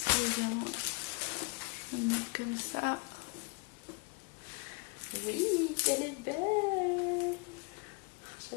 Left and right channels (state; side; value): quieter; right; 30.0 dB